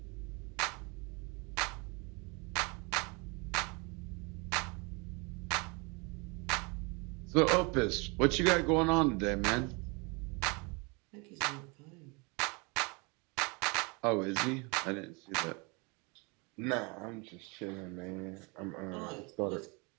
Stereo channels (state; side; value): quieter; left; 29.9 dB